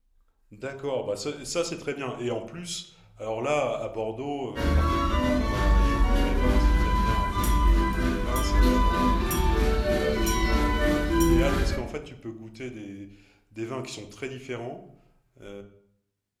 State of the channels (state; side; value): identical; both; correlation 1.00